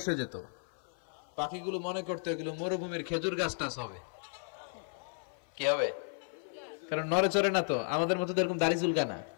যেত। পাখিগুলো মনে করতো এগুলো মরুভূমির খেজুর গাছটা হবে। কি হবে? কারণ নড়ে চড়ে না তো, আমাদের মতো এরকম দাড়ি চুলকা না,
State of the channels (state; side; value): silent; right; 55 dB below the other